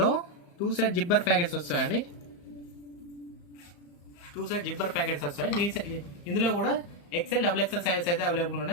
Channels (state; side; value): late; right; 34 ms